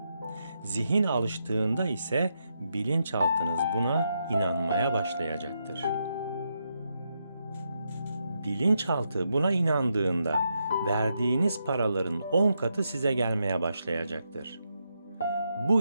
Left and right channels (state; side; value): inverted; both; correlation -0.82